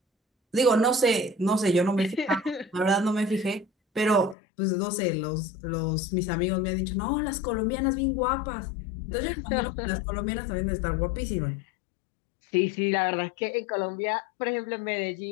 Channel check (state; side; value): drops out; right; at 4.4 s